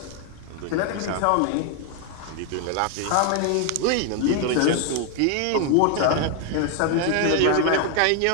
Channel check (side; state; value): both; different; correlation 0.01